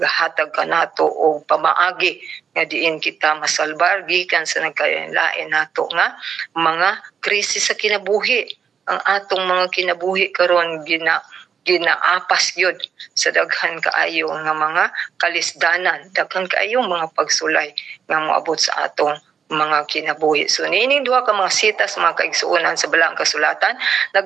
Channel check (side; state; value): left; quieter; 7.0 dB